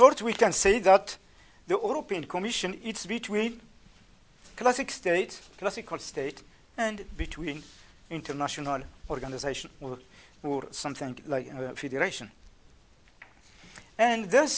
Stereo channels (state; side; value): identical; both; correlation 1.00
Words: we can say that the European Commission is between classical state, and between international organization or something like federation. And